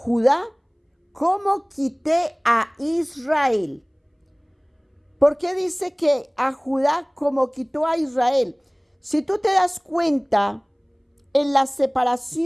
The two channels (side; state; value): both; identical; correlation 1.00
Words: como quité a Israel. ¿Por qué dice que a Judá como quitó a Israel? Si tú te das cuenta, en la